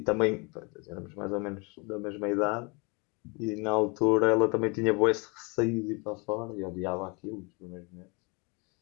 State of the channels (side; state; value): right; quieter; 29.9 dB